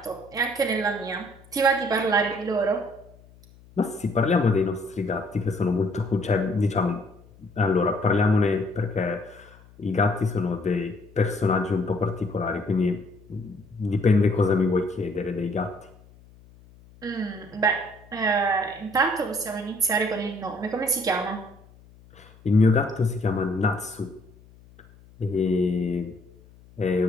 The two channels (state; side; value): noise; left; hum, 25 dB below the sound